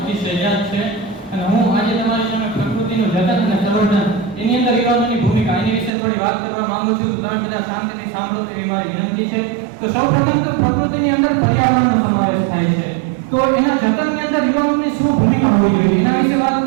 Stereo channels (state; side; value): drops out; left; at 5.9 s